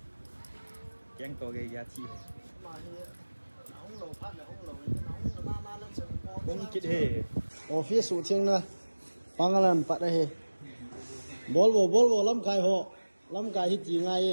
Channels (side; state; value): both; inverted; correlation -1.00